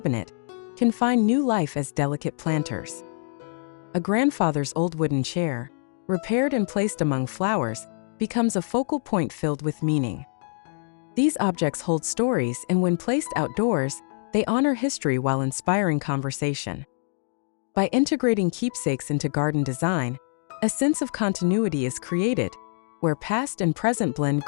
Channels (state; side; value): silent; right; digital silence